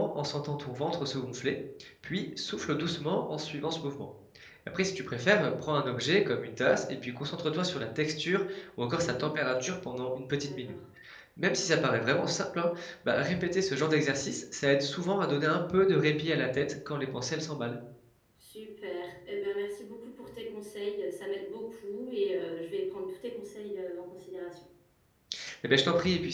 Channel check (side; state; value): both; identical; correlation 1.00